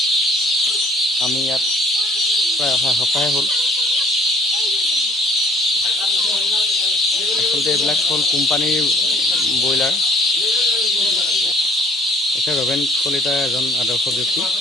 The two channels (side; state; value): both; normal; correlation 0.58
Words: আমি ইয়াত প্ৰায় অহা সপ্তাহে হ'ল। আচলতে এইবিলাক হ'ল কোম্পানীৰ ব্ৰইলাৰ। এখেত ৰবেন কলিতা এজন আদৰ্শ ব্যক্তি।